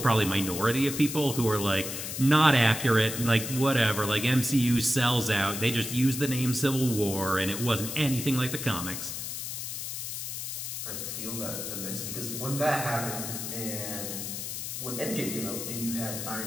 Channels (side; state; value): left; noise; hiss, 5 dB below the sound